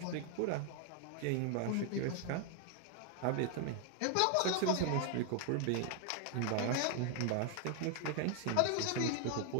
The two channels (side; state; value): both; different; correlation 0.00